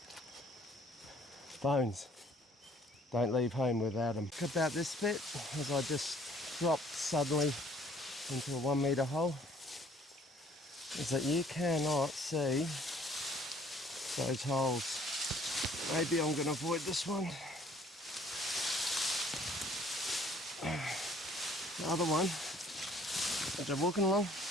Phones. Don't leave home without them. About this bit, as I just dropped suddenly into a 1 metre hole, is that you cannot see those holes. Maybe I'm going to avoid this one. The other one, as I'm walking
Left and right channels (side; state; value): both; normal; correlation 0.59